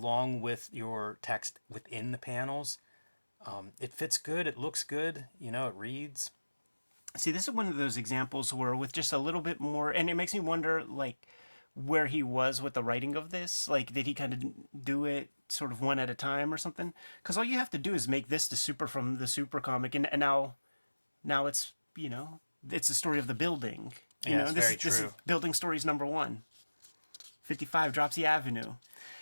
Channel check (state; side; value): inverted; both; correlation -1.00